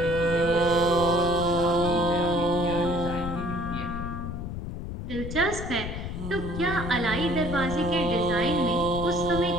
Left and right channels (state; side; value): noise; left; rumble, 6 dB below the sound